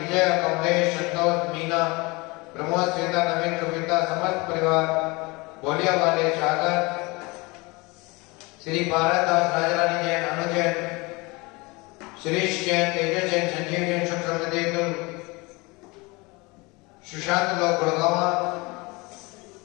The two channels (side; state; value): right; quieter; 25.3 dB